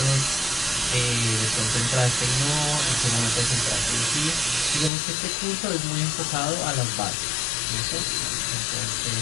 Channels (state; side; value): drops out; right; at 4.9 s